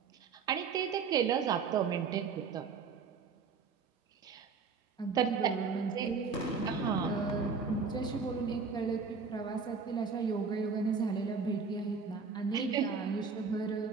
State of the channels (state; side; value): quieter; left; 5.3 dB